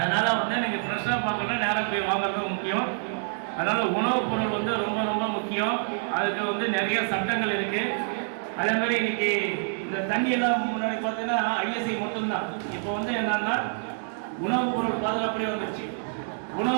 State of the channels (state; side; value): silent; left; 60 dB below the other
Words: நீங்கள் ஃப்ரெஷ்ஷாக பார்க்கணுன்னா நேராக போய் வாங்குறது முக்கியம். அதனால் உணவுப் பொருள் ரொம்ப ரொம்ப முக்கியம். அதுக்கு நிறைய சட்டங்கள் இருக்குது. அதே மாதிரி இன்னைக்கு இந்த தண்ணியெல்லாம் முன்னாடி பார்த்தீங்கன்னா ஐஎஸ்ஐ மட்டும்தான். இப்போ என்னன்னா உணவுப் பொருள் பாதுகாப்புலேயே வந்துடுச்சு.